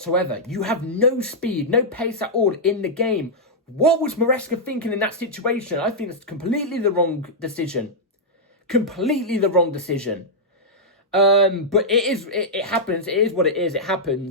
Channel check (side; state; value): both; normal; correlation -0.08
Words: You have no speed, no pace at all in the game. What was Maresca thinking in that situation? I think it's completely the wrong decision. Completely the wrong decision. But it happens. It is what it is. It